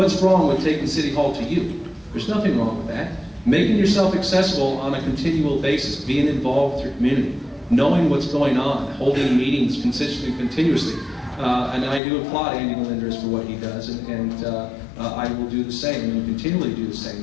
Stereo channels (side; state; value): right; drops out; at 12.0 s